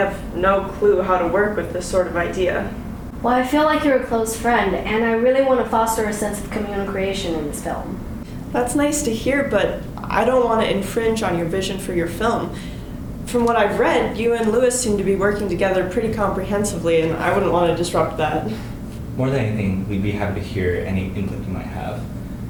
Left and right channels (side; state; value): both; identical; correlation 1.00